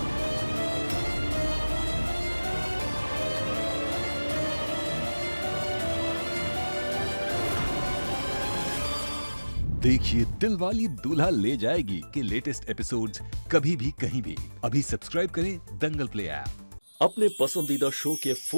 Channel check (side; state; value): both; inverted; correlation -1.00